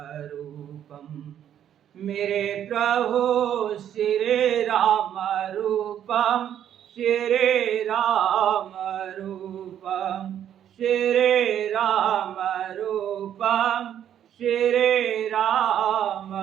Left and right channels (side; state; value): left; quieter; 10.1 dB